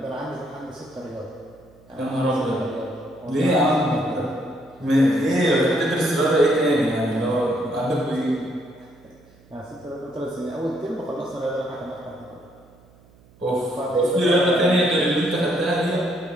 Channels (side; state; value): right; noise; hum, 28 dB below the sound